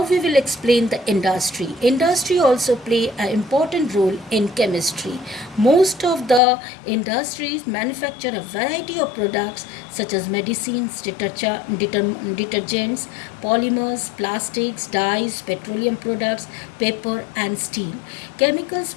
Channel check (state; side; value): drops out; right; at 6.4 s